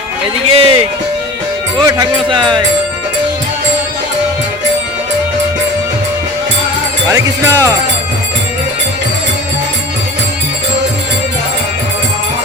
এদিকে ও ঠাকুরমশাই, হরে কৃষ্ণ।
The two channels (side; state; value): both; normal; correlation 0.38